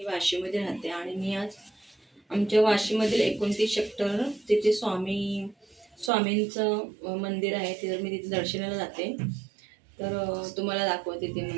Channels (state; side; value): drops out; left; at 6.1 s